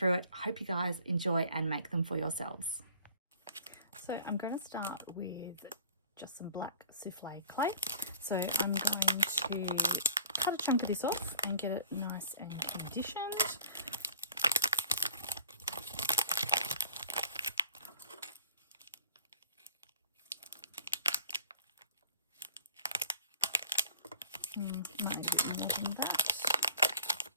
it. I hope you guys enjoy and make them for yourselves. So I'm going to start with just some black souffle clay. So I'm going to cut a chunk of this off and get it nice and conditioned. Might need a bit more than that.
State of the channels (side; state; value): both; inverted; correlation -0.48